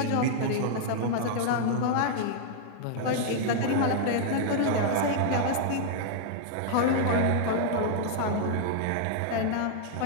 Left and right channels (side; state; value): both; different; correlation -0.01